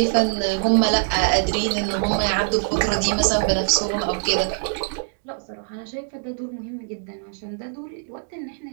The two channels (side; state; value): left; silent; digital silence